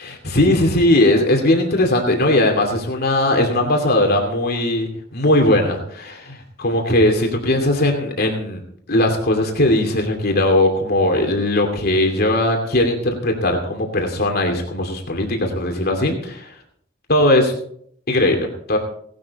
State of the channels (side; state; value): both; normal; correlation 0.13